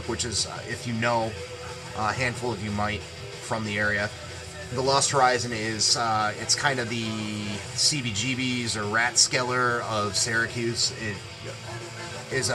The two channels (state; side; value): identical; both; correlation 1.00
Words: which is, if you know, a handful of you might from the area. The Lost Horizon is, it's kind of the CBGB's or Ratskeller of Syracuse. It is